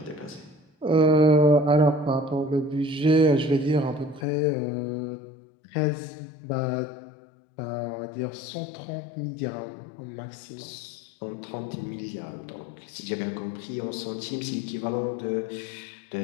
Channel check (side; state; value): right; drops out; at 4.2 s